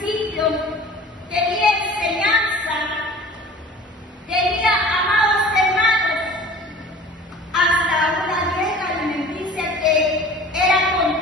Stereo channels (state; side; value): normal; both; correlation 0.44